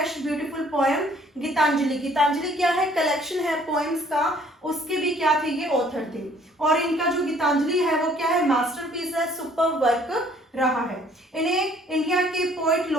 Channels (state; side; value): normal; both; correlation 0.59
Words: beautiful poem Gitanjali. Gitanjali क्या है, कलेक्शन है पोएम्स का, उसके भी क्या थे, ये ऑथर थे। और इनका जो गीतांजलि है वो क्या है, मास्टरपीस है, सुपर वर्क रहा है। इन्हें इंडिया के पोएट